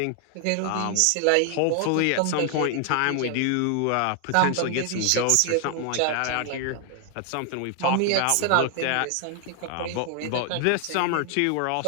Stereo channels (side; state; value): both; different; correlation 0.00